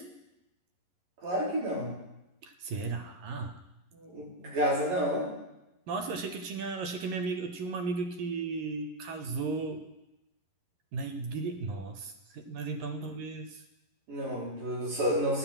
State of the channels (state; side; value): late; left; 11 ms